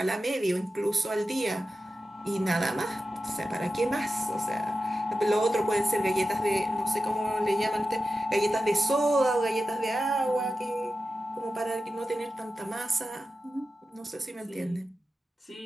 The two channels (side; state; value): both; normal; correlation 0.92